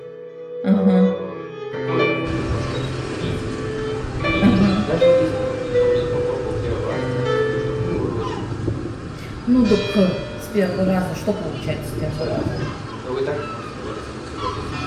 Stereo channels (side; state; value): both; identical; correlation 1.00